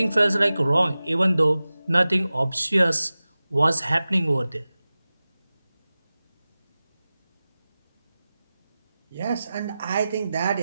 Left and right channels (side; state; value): both; inverted; correlation -0.96